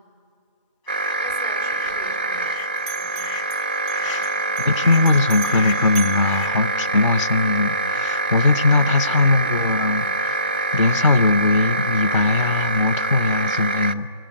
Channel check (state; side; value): inverted; both; correlation -0.54